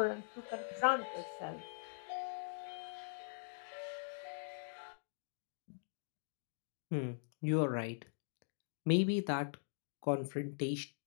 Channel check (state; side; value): silent; right; digital silence